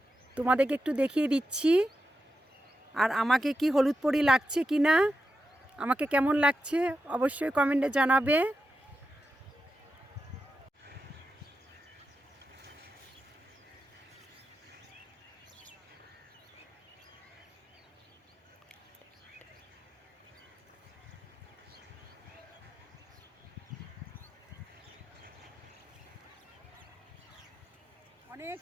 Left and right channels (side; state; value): both; normal; correlation 0.89